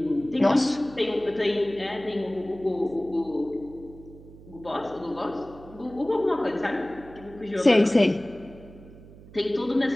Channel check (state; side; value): noise; right; hum, 20 dB below the sound